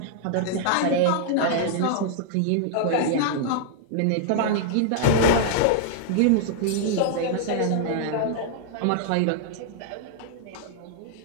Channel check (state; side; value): different; both; correlation -0.01